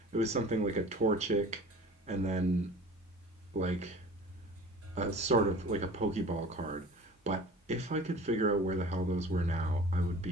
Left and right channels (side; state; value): both; normal; correlation 0.43